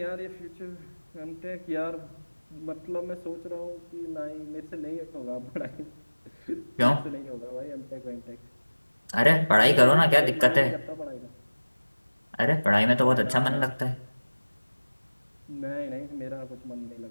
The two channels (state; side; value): inverted; both; correlation -1.00